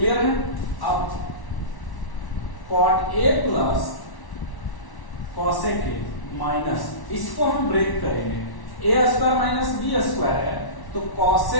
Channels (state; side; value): late; right; 1.1 ms